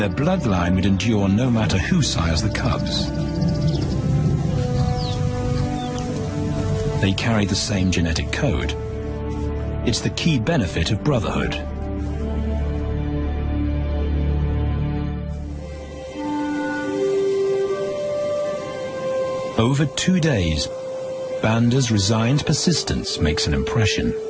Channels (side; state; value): both; identical; correlation 1.00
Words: bloodline would endure no matter who sires the cubs. They carry the same genetic code. It's the key benefit of brotherhood. Over 2 days, Banda's resigned persistence makes an impression.